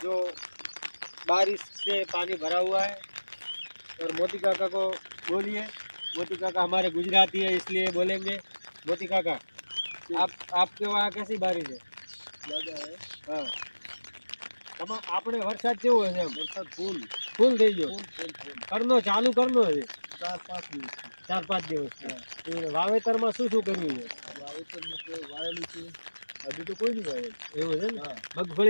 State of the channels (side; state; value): both; inverted; correlation -1.00